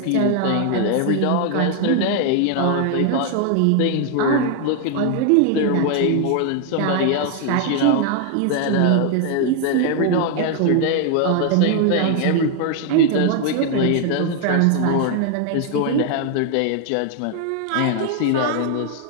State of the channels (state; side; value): different; both; correlation 0.01